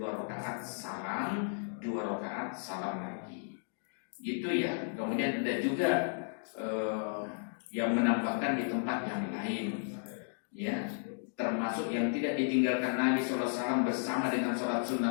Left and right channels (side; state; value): right; silent; digital silence